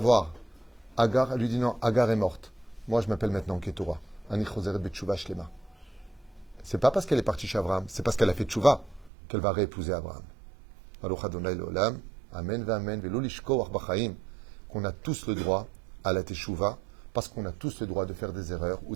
Agar, elle lui dit non, Agar est morte. Moi, je m'appelle maintenant Ketura. Ani Choseret Betchouva Shlema. C'est pas parce qu'elle est partie chez Abraham, c'est parce qu'elle a fait tchouva qu'elle va réépouser Abraham. Baruch Adonai Leolam, Amen Amen, Velo Lishko Arbachaim, qu'on a tous le droit à la teshuva, parce qu'on a tous le droit de faire des erreurs ou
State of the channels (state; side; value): drops out; left; at 9.1 s